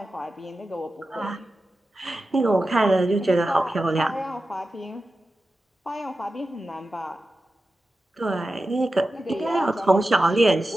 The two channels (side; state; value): both; normal; correlation 0.93